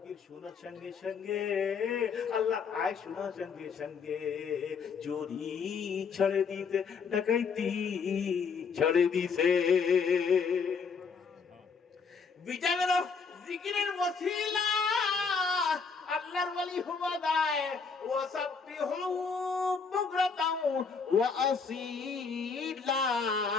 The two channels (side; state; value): right; quieter; 5.5 dB